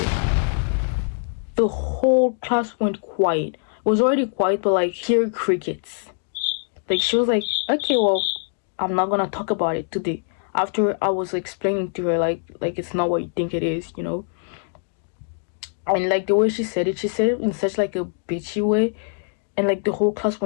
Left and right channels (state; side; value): silent; right; digital silence